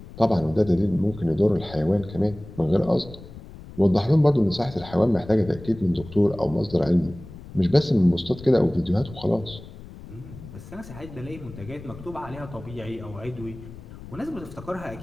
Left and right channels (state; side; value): noise; left; rumble, 16 dB below the sound